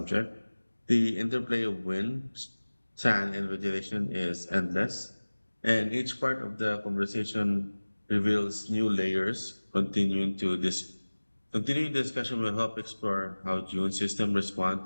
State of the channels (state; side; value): inverted; both; correlation -1.00